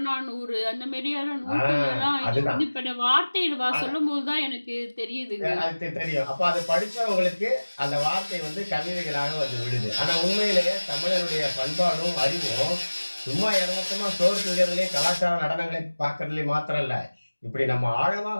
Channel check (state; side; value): inverted; both; correlation -1.00